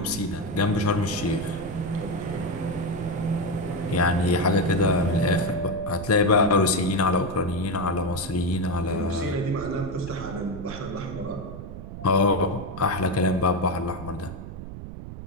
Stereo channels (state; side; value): noise; right; rumble, 10 dB below the sound